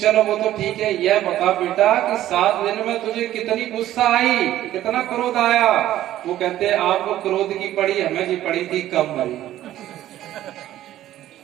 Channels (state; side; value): quieter; left; 13.3 dB